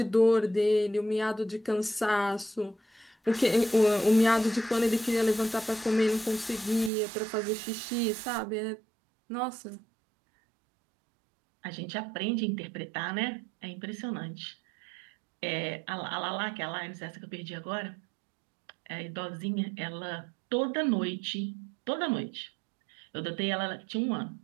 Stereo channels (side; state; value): left; drops out; at 6.9 s